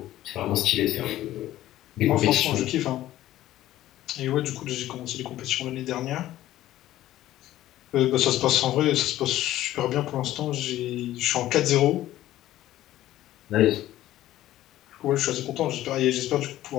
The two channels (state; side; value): quieter; right; 14.2 dB